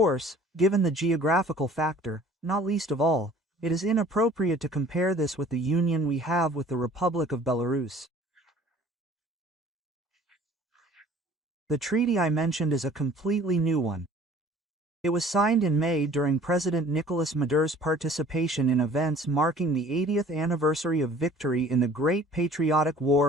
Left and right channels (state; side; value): normal; both; correlation 0.51